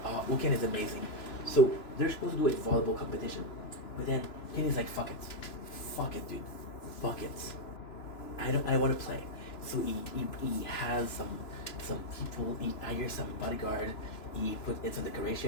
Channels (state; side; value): late; right; 3.0 ms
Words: is amazing. So they're supposed to do a volleyball competition, but then Kenny's like, fuck it, dude, fuck it. I want to play. So he has some people. He hires some bodyguard. He put in some